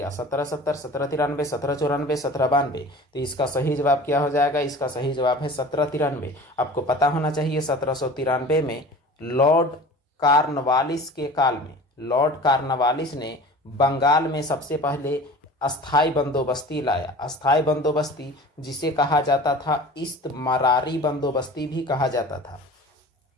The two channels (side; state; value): both; normal; correlation 0.40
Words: 1770, 1793, 1794, 1792। तो इसका सही जवाब क्या हो जाएगा? इसका सही जवाब है 1793। आपको पता होना चाहिए 1793 में लॉर्ड कॉर्नवालिस के काल में लॉर्ड कॉर्नवालिस ने बंगाल में सबसे पहले अस्थायी बंदोबस्ती लाया। अस्थायी बंदोबस्ती जिसे कहा जाता था इस्तमरारी बंदोबस्ती भी कहा जाता था,